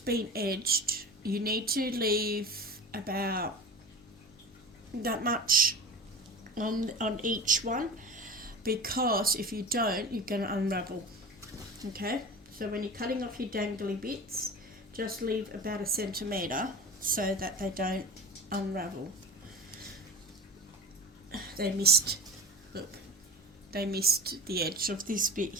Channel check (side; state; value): both; normal; correlation 0.32